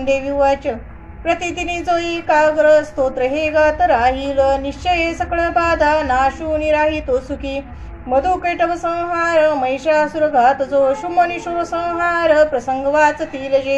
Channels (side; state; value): both; identical; correlation 1.00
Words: उवाच। प्रतिदिनी जो एकाग्र स्तोत्र हे गात राहील, निश्चय सकळ बाधा नाशूनी राहितो सुखी। मधुकैटभ संहार महिषासुर घात जो, शुंभनिशूर संहार प्रसंग वाचतील